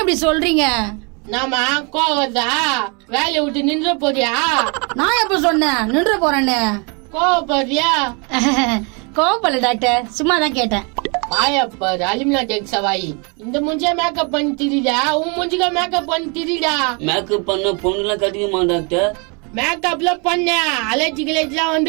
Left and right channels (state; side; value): quieter; left; 33.1 dB